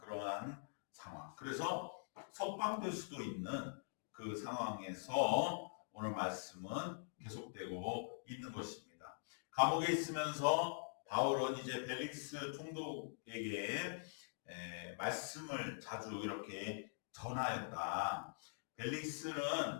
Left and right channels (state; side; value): silent; right; digital silence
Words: 상황. 그래서 석방될 수도 있는 그 상황에서 오늘 말씀은 계속되고 있는 것입니다. 감옥에 있으면서 바울은 이제 벨릭스 총독에게 말씀을 자주 이렇게 전하였다.